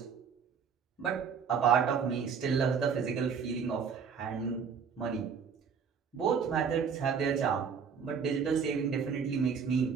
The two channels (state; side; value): quieter; left; 6.5 dB